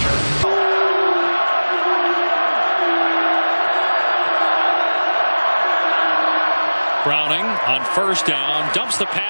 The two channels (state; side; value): inverted; both; correlation -1.00